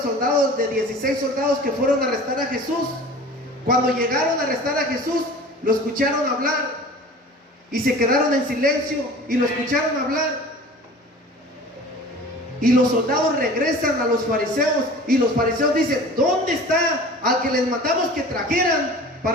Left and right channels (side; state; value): both; normal; correlation 0.41